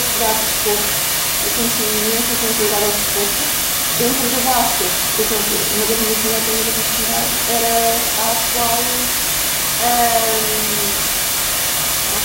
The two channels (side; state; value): both; identical; correlation 1.00